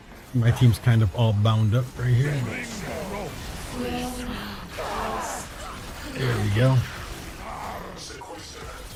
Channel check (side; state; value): both; identical; correlation 1.00